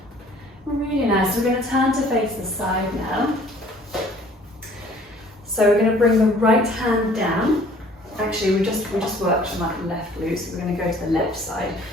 Really nice. We're going to turn to face the side now. So we're going to bring the right hand down. Actually, we just worked on that left glute, so we're going to go to the left side.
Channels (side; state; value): both; normal; correlation 0.54